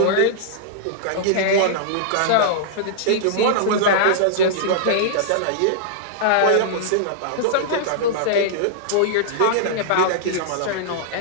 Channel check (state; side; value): different; both; correlation -0.02